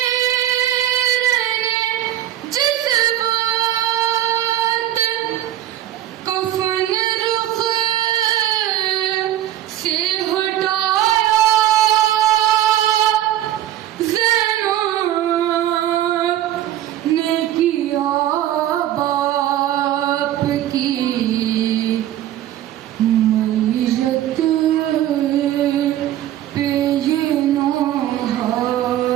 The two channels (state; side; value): quieter; left; 12.7 dB